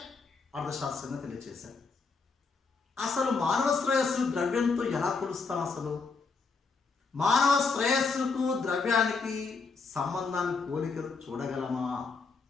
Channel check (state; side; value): quieter; right; 4.6 dB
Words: అర్థశాస్త్రంగా తెలియజేశారు. అసలు మానవ శ్రేయస్సు ద్రవ్యంతో ఎలా కొలుస్తాం? అసలు మానవ శ్రేయస్సుకు ద్రవ్యానికి సంబంధాన్ని, పోలికలు చూడగలమా?